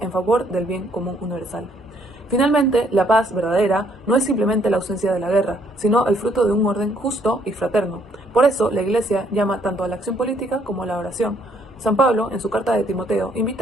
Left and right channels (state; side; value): normal; both; correlation 0.67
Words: en favor del bien común universal. Finalmente, la paz verdadera no es simplemente la ausencia de la guerra, sino el fruto de un orden justo y fraterno. Por eso, la Iglesia llama tanto a la acción política como a la oración. San Pablo, en su carta de Timoteo,